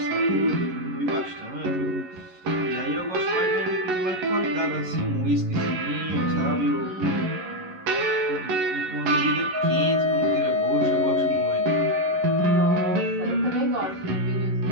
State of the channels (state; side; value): late; left; 11 ms